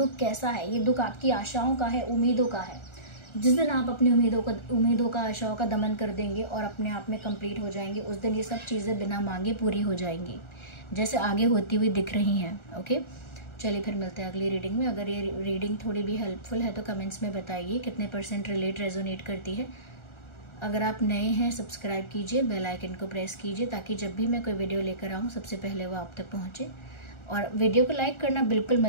कैसा है, ये दुख आपकी आशाओं का है, उम्मीदों का है। जिस दिन आप अपनी उम्मीदों का, आशाओं का दमन कर देंगे और अपने आप में कंप्लीट हो जाएंगे, उस दिन ये सब चीज़ें बिना मांगे पूरी हो जाएंगी, जैसे आगे होती हुई दिख रही हैं, ओके। चलिए फिर मिलते हैं अगली रीडिंग में। अगर ये रीडिंग थोड़ी भी हेल्पफुल है तो कमेंट्स में बताइए कितने % रिलेट रेजोनेट करती है। अगर आप नए हैं, सब्सक्राइब कीजिए, बेल आइकन को प्रेस कीजिए ताकि जब भी मैं कोई वीडियो लेकर आऊँ सबसे पहले वो आप तक पहुँचे। और वीडियो को लाइक करना बिल्कुल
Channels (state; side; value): late; right; 1.4 ms